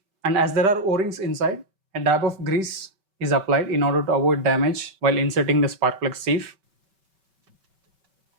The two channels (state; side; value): late; left; 5.2 ms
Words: and as there are O-rings inside, a dab of grease is applied in order to avoid damage while inserting the spark plug sieve.